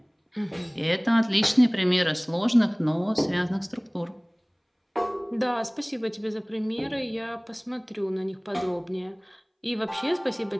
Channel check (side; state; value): both; identical; correlation 1.00